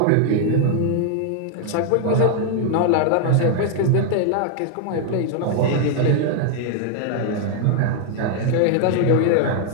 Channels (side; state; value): both; different; correlation 0.00